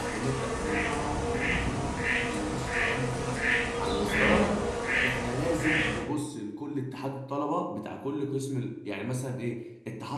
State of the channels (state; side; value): identical; both; correlation 1.00